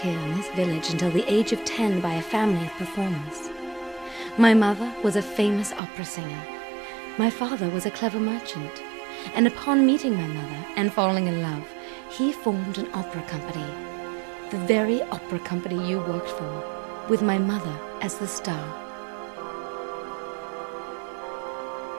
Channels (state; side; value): drops out; left; at 5.8 s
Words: in this village until the age of 10 by a family of performers. My mother was a famous opera singer. My father was a clever merchant. And upon meeting my mother and falling in love, he formed an opera company. The very opera company you worked for, with my mother as the star.